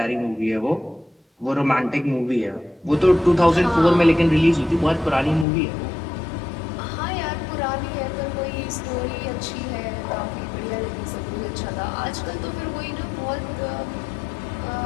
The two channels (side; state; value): right; drops out; at 5.5 s